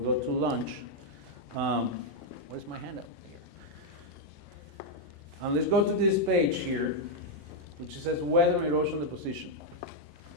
go to lunch. Where's my handout? Let's go to this page here, which says weather, erosion, deposition.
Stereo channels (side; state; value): both; normal; correlation -0.01